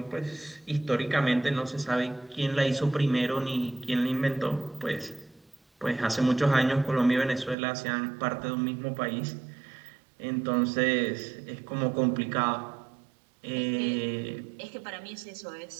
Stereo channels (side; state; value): left; drops out; at 7.6 s